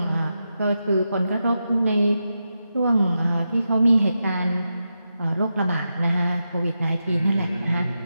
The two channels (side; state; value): both; inverted; correlation -0.88